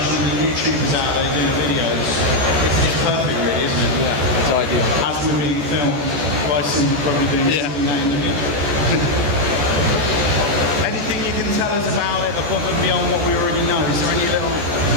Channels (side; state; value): left; late; 14 ms